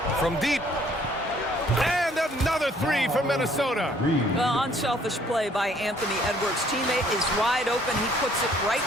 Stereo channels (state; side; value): normal; both; correlation 0.61